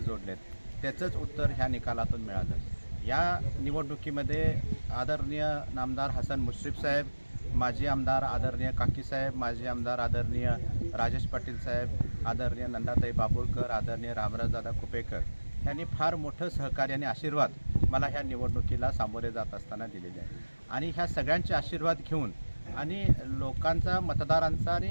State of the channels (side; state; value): both; inverted; correlation -1.00